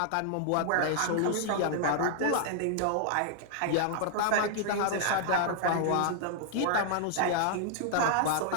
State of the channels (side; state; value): both; different; correlation -0.01